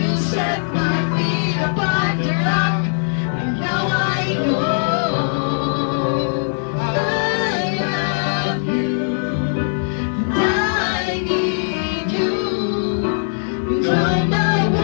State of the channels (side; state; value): right; silent; digital silence